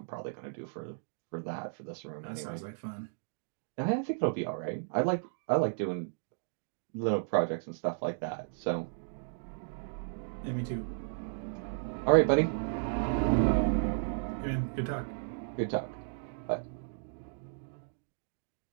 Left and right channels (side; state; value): left; silent; digital silence